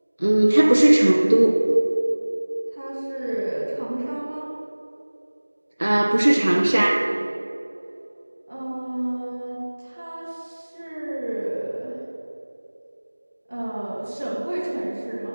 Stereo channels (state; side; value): inverted; both; correlation -1.00